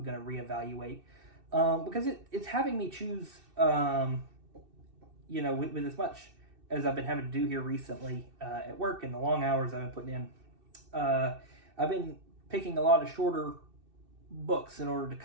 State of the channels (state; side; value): late; left; 2.6 ms